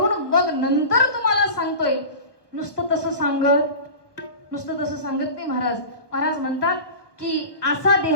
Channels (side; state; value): right; late; 1.3 ms